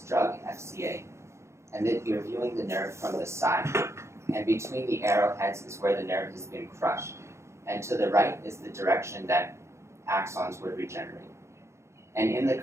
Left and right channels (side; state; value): left; late; 0.13 ms